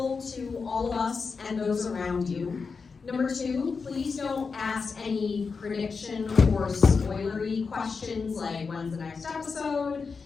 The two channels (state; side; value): quieter; right; 5.0 dB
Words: to all of us and those around you. Number two, please don't ask any prediction or spoilery questions like when's the next episode,